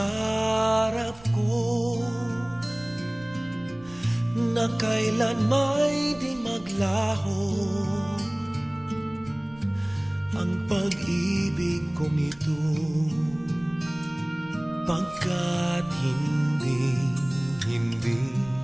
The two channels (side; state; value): right; noise; rumble, 23 dB below the sound